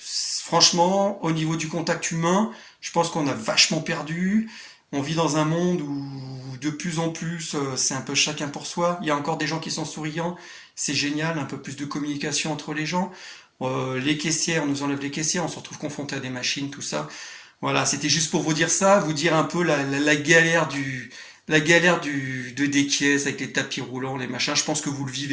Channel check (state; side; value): identical; both; correlation 1.00